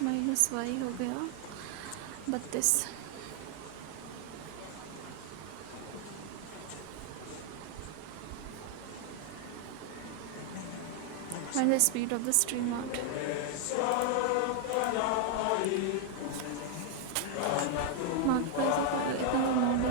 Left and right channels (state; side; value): different; both; correlation 0.00